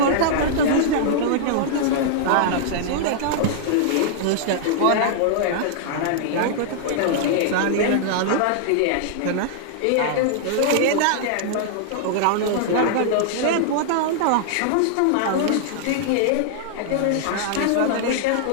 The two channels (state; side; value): different; both; correlation -0.01